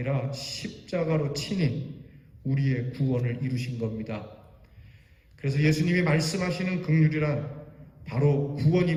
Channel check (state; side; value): identical; both; correlation 1.00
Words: 십자가로 친히 우리의 구원을 이루신 겁니다. 그래서 예수님이 말씀하시는 긍휼이란 바로